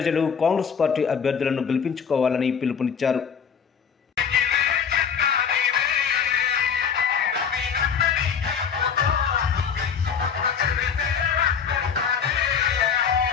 కాంగ్రెస్ పార్టీ అభ్యర్థులను గెలిపించుకోవాలని పిలుపునిచ్చారు.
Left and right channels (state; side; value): quieter; right; 7.0 dB